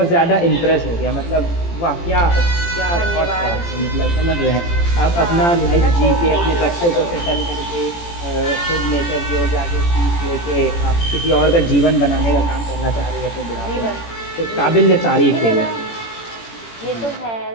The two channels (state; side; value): late; right; 18 ms